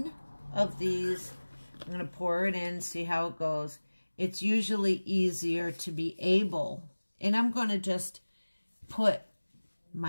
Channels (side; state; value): both; inverted; correlation -1.00